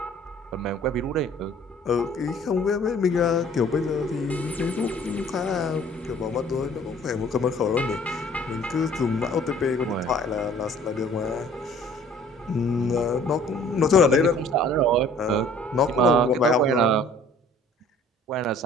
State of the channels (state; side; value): normal; both; correlation 0.53